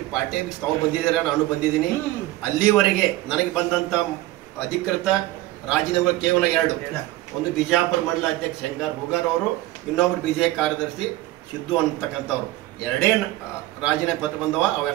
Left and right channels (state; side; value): quieter; left; 16.9 dB